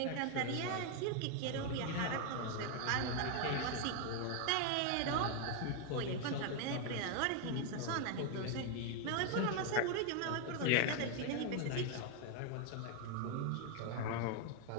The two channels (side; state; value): both; different; correlation 0.01